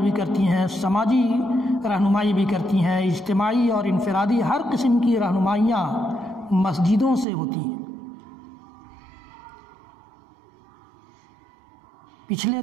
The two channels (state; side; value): drops out; left; at 7.2 s